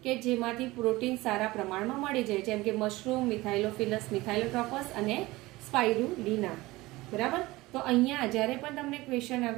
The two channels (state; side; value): quieter; left; 19.9 dB